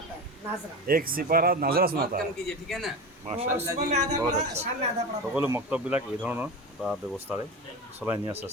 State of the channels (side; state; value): both; normal; correlation 0.26